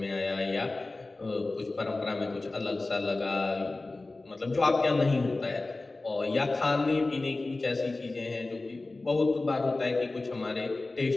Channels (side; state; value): right; quieter; 3.2 dB